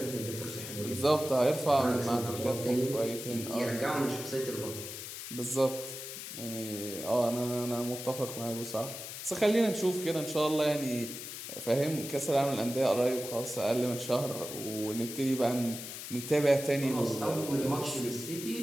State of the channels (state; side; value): noise; left; hiss, 9 dB below the sound